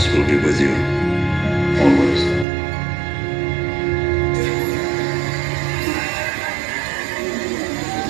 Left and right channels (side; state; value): left; drops out; at 2.5 s